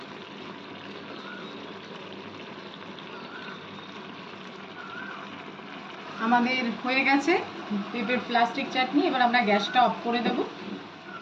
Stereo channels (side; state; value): both; identical; correlation 1.00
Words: আমাদের হয়ে গেছে পেঁপের প্লাস্টিক চাটনি। এবার আমরা গ্যাসটা অফ করে দেব।